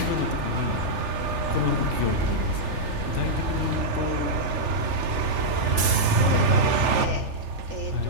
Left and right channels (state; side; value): late; left; 3.4 ms